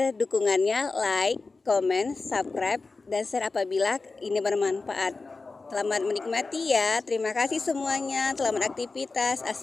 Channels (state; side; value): quieter; right; 3.8 dB